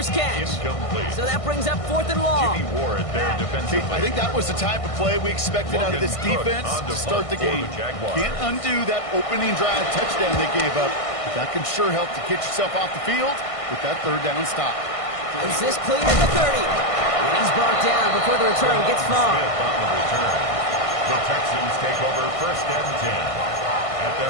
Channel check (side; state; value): right; late; 1.5 ms